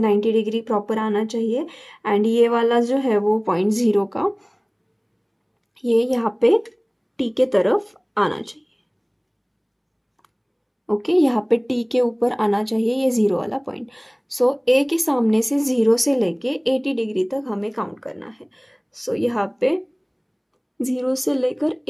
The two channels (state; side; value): identical; both; correlation 1.00